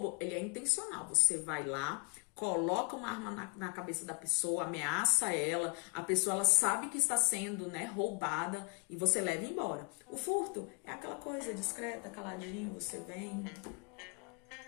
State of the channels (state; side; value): quieter; right; 34.8 dB